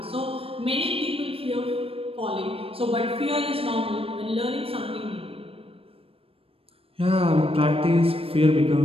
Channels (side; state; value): left; late; 0.28 ms